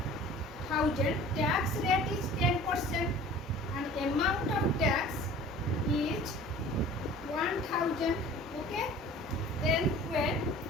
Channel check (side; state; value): both; normal; correlation 0.45